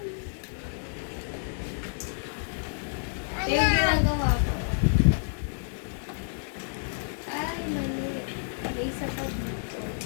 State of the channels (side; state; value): right; silent; digital silence